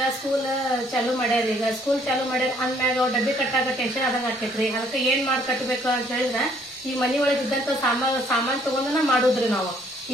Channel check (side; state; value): both; normal; correlation 0.64